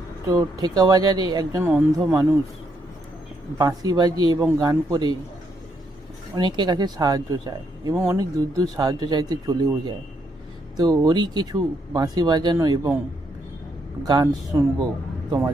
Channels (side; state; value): both; normal; correlation 0.76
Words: তো ঠেকা বাজারে একজন অন্ধ মানুষ বাঁশি বাজিয়ে এবং গান করে অনেকের কাছে সাহায্য চায় এবং অনেক দূর দূর সাহায্য চাইতে চলেও যায়। তো ওরই কিছু বাঁশি বাজানো এবং গান শুনবো,